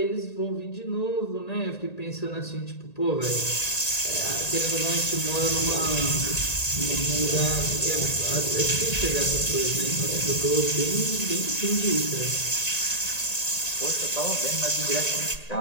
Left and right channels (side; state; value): right; late; 1.9 ms